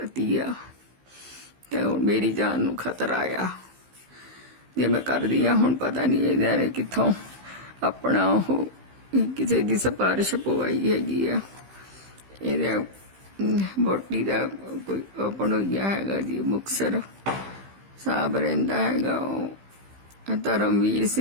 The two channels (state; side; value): late; left; 15 ms